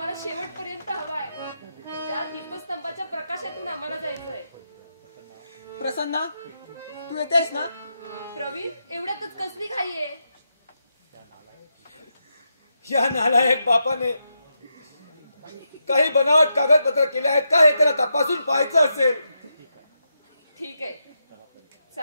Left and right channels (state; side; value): inverted; both; correlation -0.85